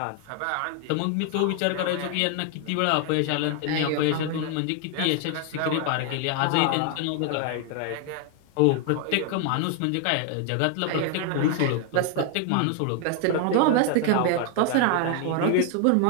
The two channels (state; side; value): different; both; correlation 0.00